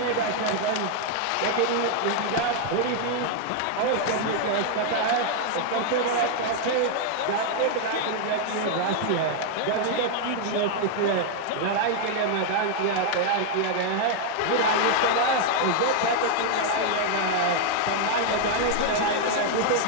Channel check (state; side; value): different; both; correlation 0.00